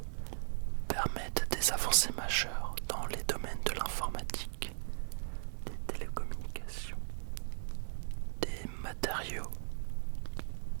permettent des avancées majeures dans les domaines de l'informatique, des télécommunications, des matériaux,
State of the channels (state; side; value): silent; left; 53 dB below the other